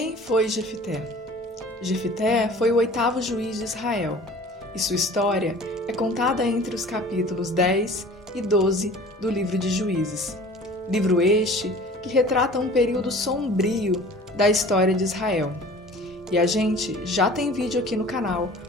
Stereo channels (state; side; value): normal; both; correlation 0.45